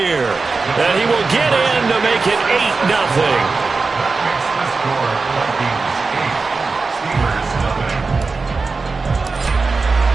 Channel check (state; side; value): quieter; left; 4.2 dB